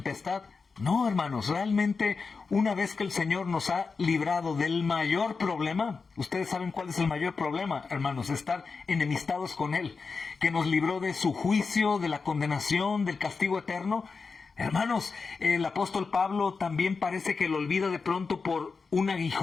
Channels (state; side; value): quieter; right; 4.7 dB